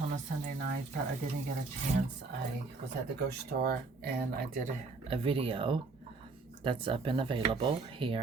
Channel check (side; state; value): left; quieter; 3.9 dB